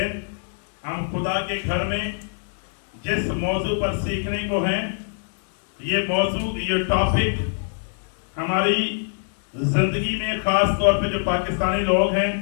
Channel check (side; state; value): right; silent; 63 dB below the other